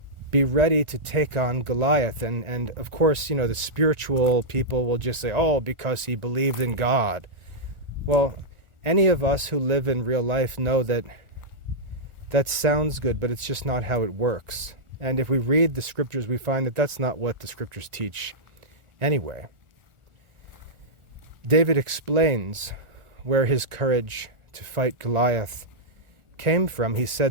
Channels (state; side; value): late; left; 1.4 ms